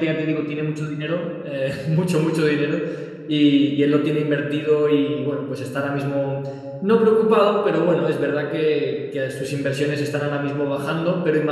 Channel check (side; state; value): both; identical; correlation 1.00